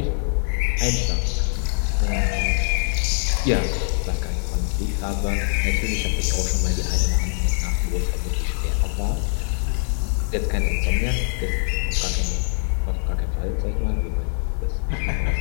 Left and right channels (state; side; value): silent; right; 60 dB below the other